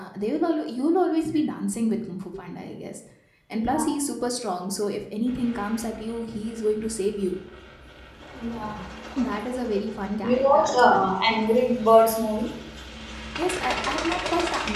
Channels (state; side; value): identical; both; correlation 1.00